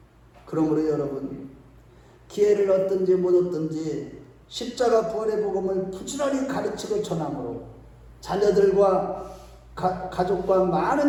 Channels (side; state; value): both; identical; correlation 1.00